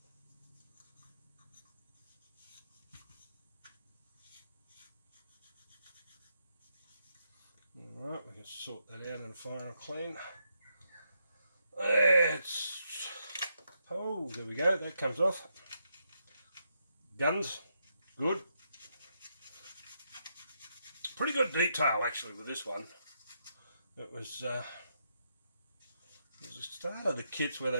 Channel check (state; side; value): inverted; both; correlation -0.80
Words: Alright, we can sort that out in a final clean. Oh, there we go, that comes off. Guns, good. Pretty good detail actually with this one. It was the start of the kits where